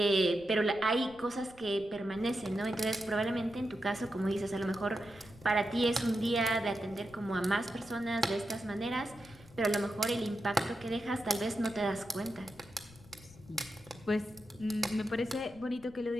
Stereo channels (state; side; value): noise; left; rumble, 22 dB below the sound